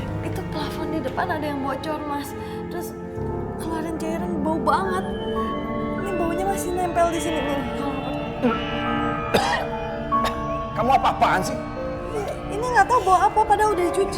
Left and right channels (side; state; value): both; identical; correlation 1.00